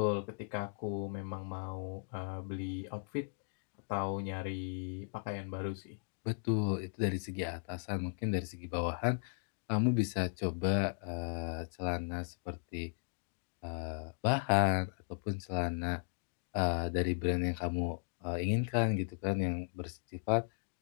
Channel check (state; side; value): silent; right; digital silence